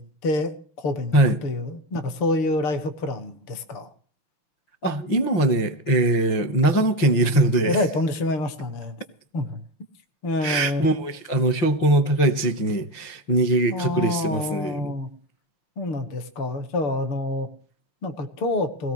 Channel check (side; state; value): right; late; 5.8 ms